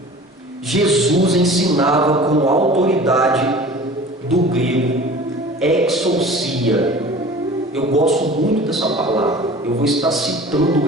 Jesus ensinava com autoridade, do grego exousia. Eu gosto muito dessa palavra, eu vou estar citando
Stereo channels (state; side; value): normal; both; correlation 0.42